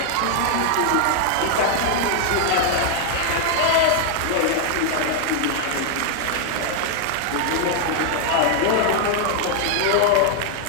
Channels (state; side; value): different; both; correlation 0.00